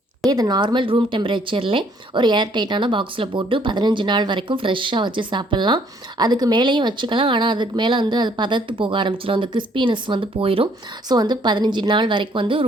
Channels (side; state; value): both; normal; correlation 0.64